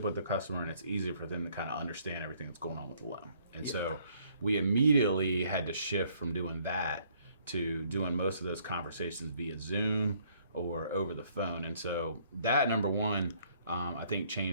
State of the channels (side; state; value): both; inverted; correlation -0.64